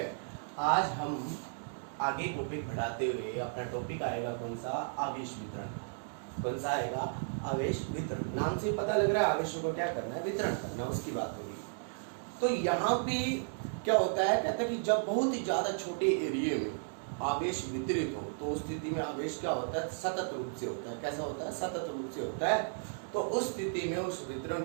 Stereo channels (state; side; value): silent; left; digital silence